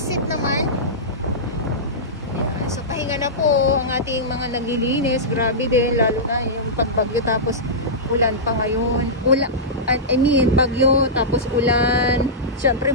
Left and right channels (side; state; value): both; normal; correlation -0.14